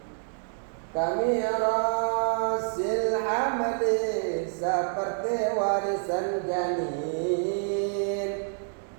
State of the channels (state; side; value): silent; left; digital silence